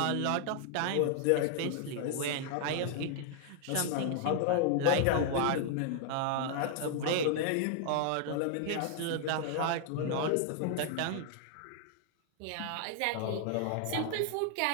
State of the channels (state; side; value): different; both; correlation 0.00